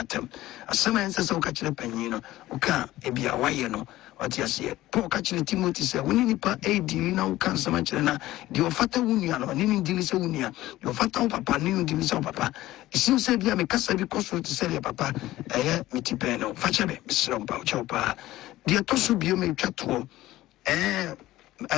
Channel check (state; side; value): quieter; right; 16.1 dB